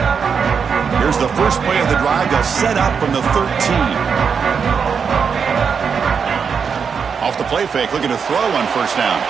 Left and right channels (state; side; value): quieter; left; 6.3 dB